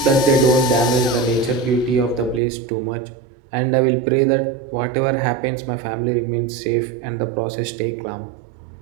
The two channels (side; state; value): left; drops out; at 2.4 s